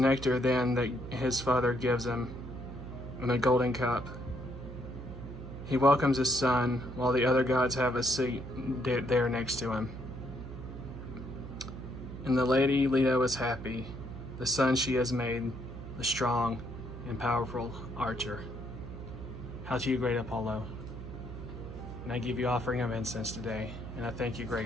then that his father gives him in a golden cup. He welcomes his son while the other gods have a seat there next to him. And the lady Leto is happy, the son she has made, the strong and powerful archer. Hail to you, great Apollo. And I give you offering of incense today, And I thank you,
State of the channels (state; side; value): noise; right; hum, 10 dB below the sound